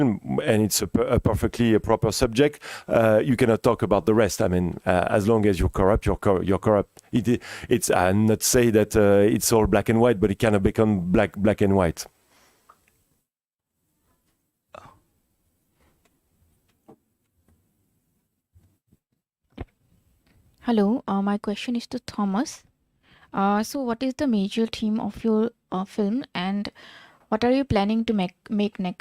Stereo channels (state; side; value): identical; both; correlation 1.00